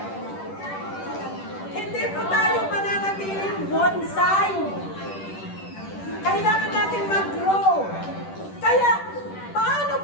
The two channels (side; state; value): right; late; 10 ms